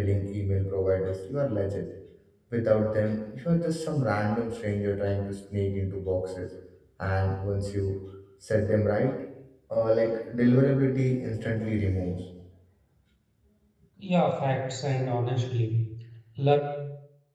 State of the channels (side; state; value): both; identical; correlation 1.00